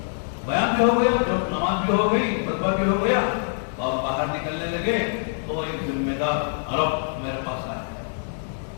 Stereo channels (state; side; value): silent; right; digital silence